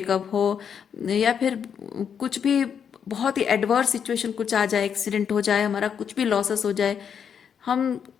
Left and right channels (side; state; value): right; quieter; 7.6 dB